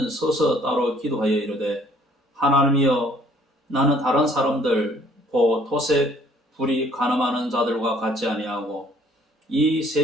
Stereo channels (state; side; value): normal; both; correlation 0.59